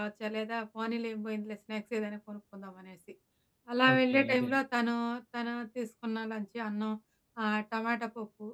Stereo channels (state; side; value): identical; both; correlation 1.00